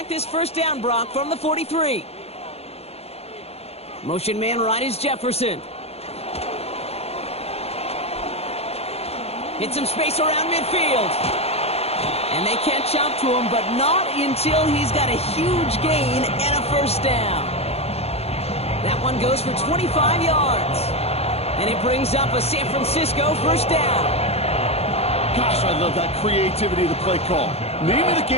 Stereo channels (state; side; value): late; right; 0.30 ms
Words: this 1st down, Brock, from the 43. Motion man right is Jefferson. Hit some space around midfield. And they catch up to him, but not until he's got a huge gain and a 1st down. That one goes for 25 yards. And it brings up a San Francisco 1st down. Gosh, I love that creativity of the play call. Name of the